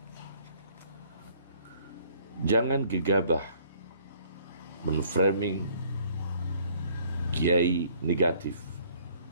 Jangan gegabah menframing kiai negatif,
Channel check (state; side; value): inverted; both; correlation -0.59